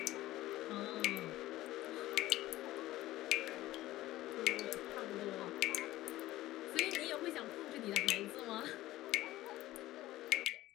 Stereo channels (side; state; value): right; quieter; 16.1 dB